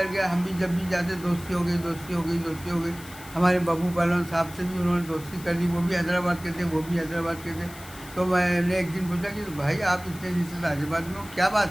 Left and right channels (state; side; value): noise; left; hiss, 18 dB below the sound